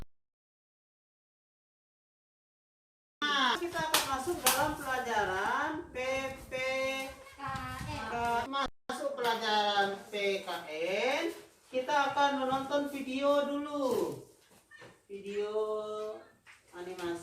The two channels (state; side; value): identical; both; correlation 1.00